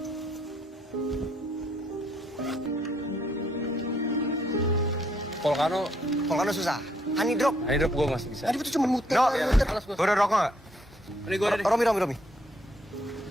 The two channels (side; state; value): both; normal; correlation 0.70